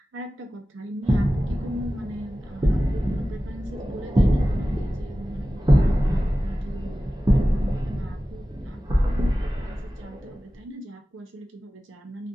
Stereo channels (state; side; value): normal; both; correlation 0.95